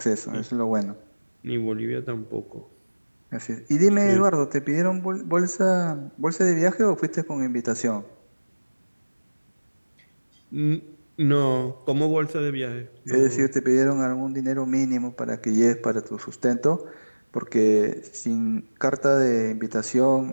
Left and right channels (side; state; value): both; inverted; correlation -1.00